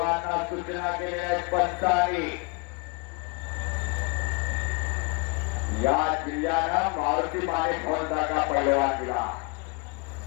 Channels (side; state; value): right; quieter; 30.7 dB